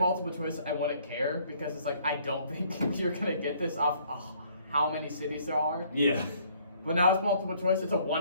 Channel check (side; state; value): both; inverted; correlation -0.61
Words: multiple choice, I wouldn't care because it's like I don't think you're gonna get this off how many cities there are. Yeah. But now it's multiple choice. It's a